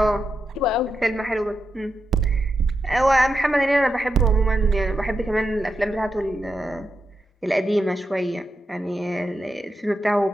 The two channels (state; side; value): normal; both; correlation 0.86